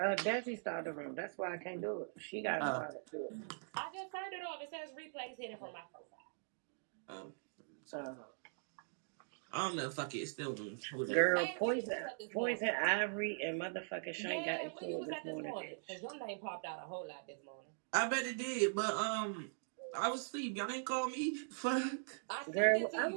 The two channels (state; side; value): silent; left; digital silence